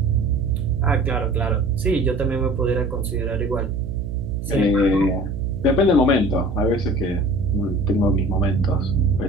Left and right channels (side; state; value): right; noise; hum, 5 dB below the sound